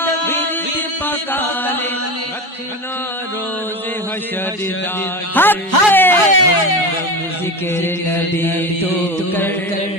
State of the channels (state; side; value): normal; both; correlation 0.25